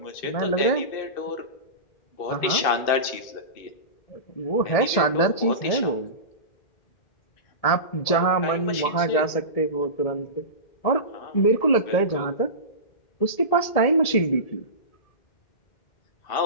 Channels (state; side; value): late; right; 1.7 ms